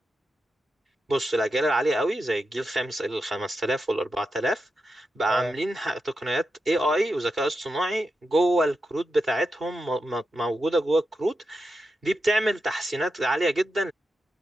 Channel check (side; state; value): both; normal; correlation 0.88